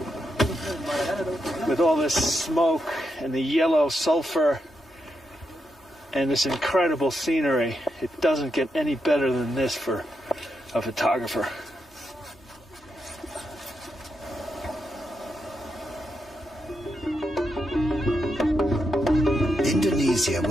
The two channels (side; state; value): both; normal; correlation 0.83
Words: With all this smoke and the yellow sulfur and this incredible scenery, it doesn't get any better than this for a photographer. Indonesia